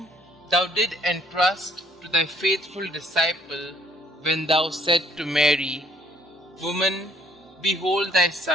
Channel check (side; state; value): both; normal; correlation 0.63